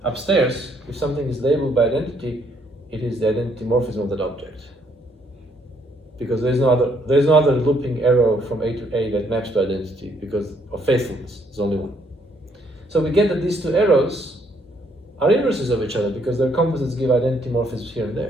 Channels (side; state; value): both; normal; correlation 0.69